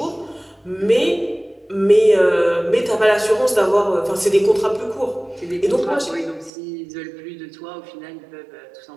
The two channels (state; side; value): drops out; left; at 6.5 s